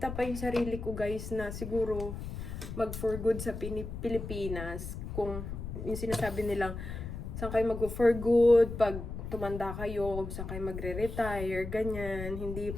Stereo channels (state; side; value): noise; left; rumble, 7 dB below the sound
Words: pa yung sarili ko, guys, na siguro mag-for good sa Pilipinas. Kung yung sinasabi nilang, saan kayo mag-for good, pag tumanda kayo, kung saan kayo magre-retire, ganyan, hindi